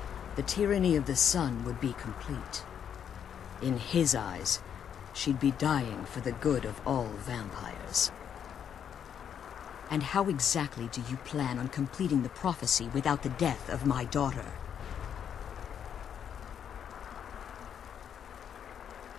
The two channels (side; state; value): right; quieter; 8.4 dB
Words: the tyranny of the sun would be complete. In his eyes, she'd be dying for the good of all vampires. And how exactly do you plan on completing the prophecy without the death of my daughter?